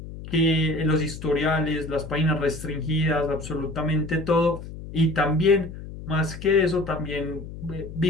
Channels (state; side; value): noise; left; hum, 12 dB below the sound